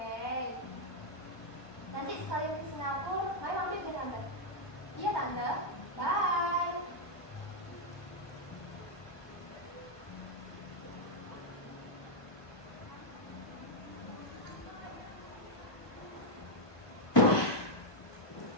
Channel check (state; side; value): late; right; 1.2 ms